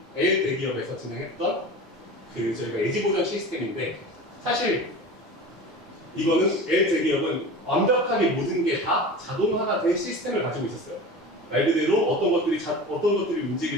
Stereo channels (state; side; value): normal; both; correlation 0.33